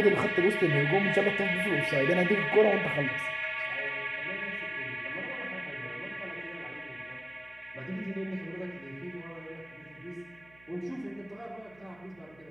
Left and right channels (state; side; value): noise; right; hum, 27 dB below the sound